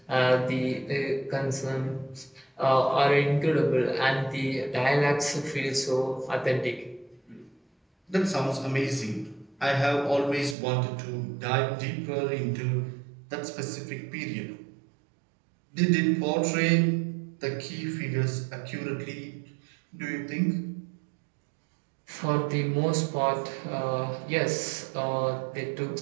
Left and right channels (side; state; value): left; drops out; at 10.6 s